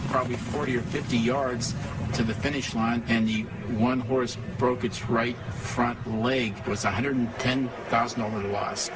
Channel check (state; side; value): identical; both; correlation 1.00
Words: probably 40 or 50 yards to the finish line, and the one horse broke its right front leg. It was a $110,000 loss.